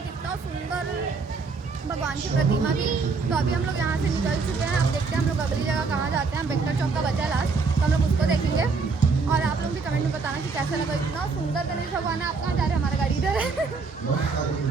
इतना सुंदर भगवान की प्रतिमा थी। तो अभी हम लोग यहाँ से निकल चुके हैं। अब देखते हैं हम लोग अगली जगह कहाँ जाते हैं। बेक्टर चौक का बचा है लास्ट, तो हम लोग उसको देखेंगे। और आप लोग भी कमेंट में बताना कि कैसा लगा, इतना सुंदर गणेश भगवान है। आप कहाँ जा रहे हैं? हमारा गाड़ी इधर है।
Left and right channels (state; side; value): quieter; left; 4.5 dB